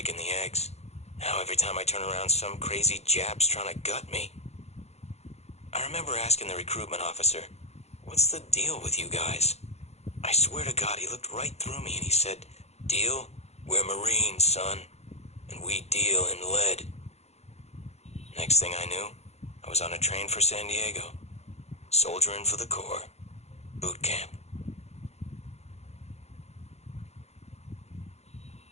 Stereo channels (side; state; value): right; late; 0.31 ms